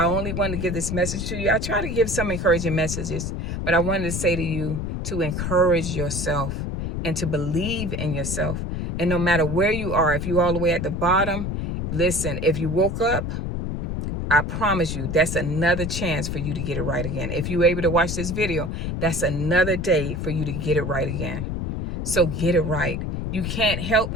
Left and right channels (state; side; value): noise; left; rumble, 3 dB below the sound